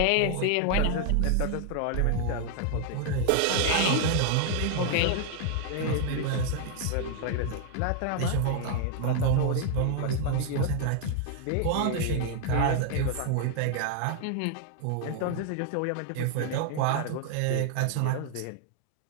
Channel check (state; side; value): different; both; correlation 0.00